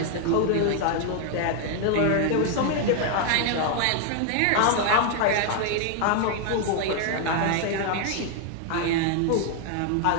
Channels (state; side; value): different; both; correlation 0.00